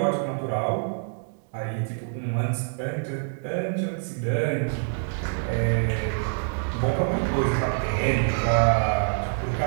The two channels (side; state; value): left; silent; 61 dB below the other